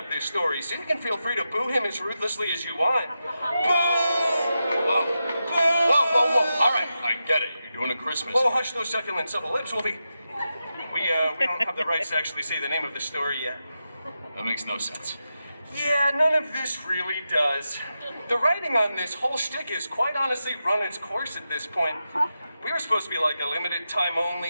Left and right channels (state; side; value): inverted; both; correlation -0.89